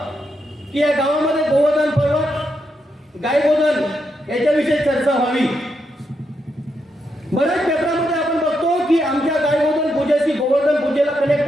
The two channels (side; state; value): both; normal; correlation 0.82